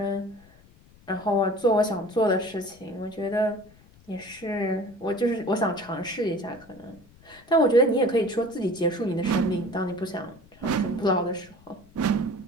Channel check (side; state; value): left; noise; rumble, 26 dB below the sound